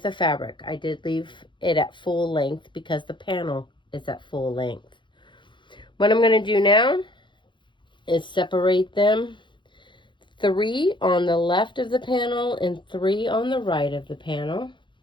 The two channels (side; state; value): right; late; 0.23 ms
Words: of fabric. I did leave it at full length because the panel is at full length. What I'm going to do now is separate them 3 on the left of the panel and 3 on the right of the panel.